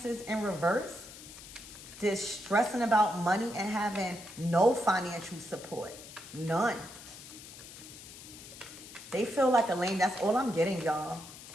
in reverse. This stressing about money and having no financial support. None. They feel like a lame. That's all I'm getting, y'all.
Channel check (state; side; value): noise; left; hiss, 15 dB below the sound